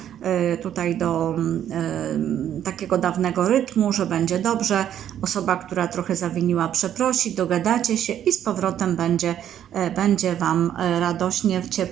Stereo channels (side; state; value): left; quieter; 10.4 dB